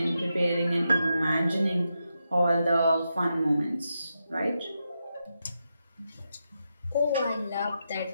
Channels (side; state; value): both; inverted; correlation -0.86